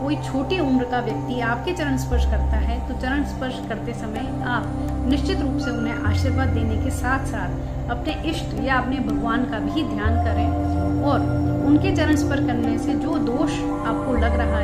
कोई छोटी उम्र का व्यक्ति आपके चरण स्पर्श करता है तो चरण स्पर्श करते समय आप निश्चित रूप से उन्हें आशीर्वाद देने के साथ साथ अपने इष्ट या अपने भगवान का भी ध्यान करें और उनके चरण स्पर्श करने से जो दोष आपको लग रहा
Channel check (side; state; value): both; identical; correlation 1.00